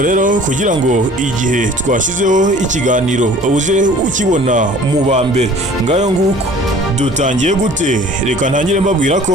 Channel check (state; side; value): normal; both; correlation 0.49